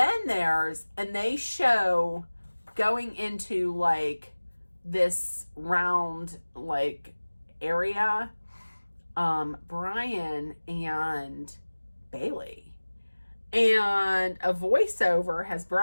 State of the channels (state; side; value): inverted; both; correlation -1.00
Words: they show going into like this round like area, Brian and Bailey, and a voiceover has